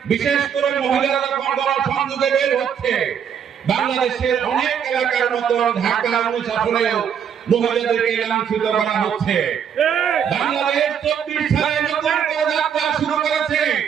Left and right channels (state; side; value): quieter; left; 8.0 dB